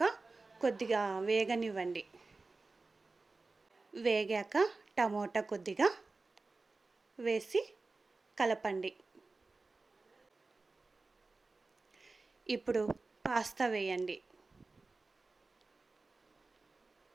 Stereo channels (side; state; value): left; quieter; 3.6 dB